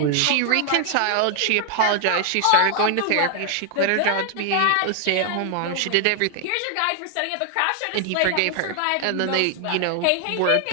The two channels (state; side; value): different; both; correlation 0.00